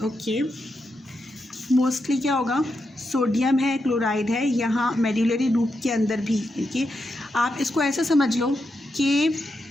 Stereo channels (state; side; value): normal; both; correlation 0.85